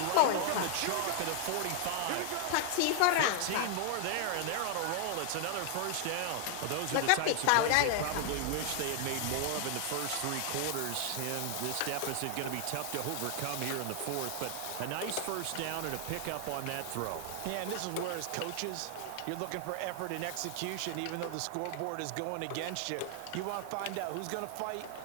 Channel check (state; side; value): different; both; correlation 0.00